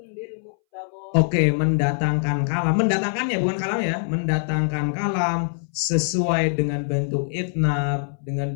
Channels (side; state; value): right; silent; 62 dB below the other